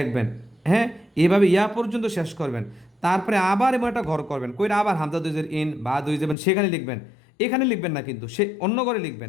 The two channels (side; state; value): right; drops out; at 6.4 s